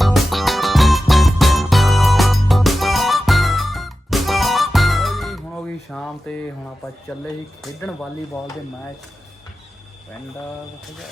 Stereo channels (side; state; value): both; normal; correlation 0.93